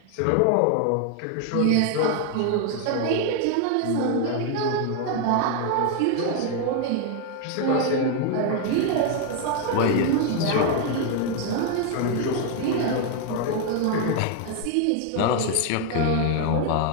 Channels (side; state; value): both; different; correlation 0.00